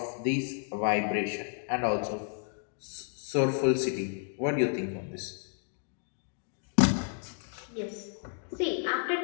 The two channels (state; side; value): silent; right; 57 dB below the other